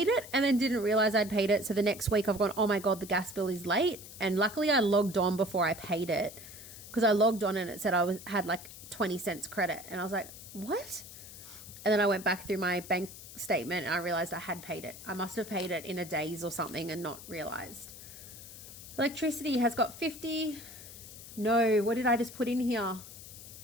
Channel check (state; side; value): noise; left; hiss, 15 dB below the sound